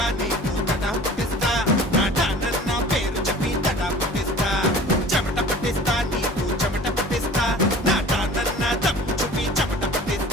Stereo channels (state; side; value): normal; both; correlation 0.44